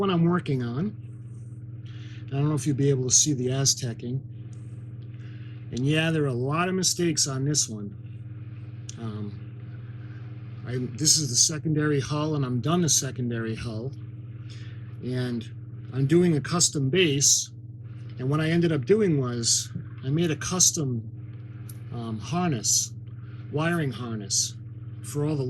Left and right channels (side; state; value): both; identical; correlation 1.00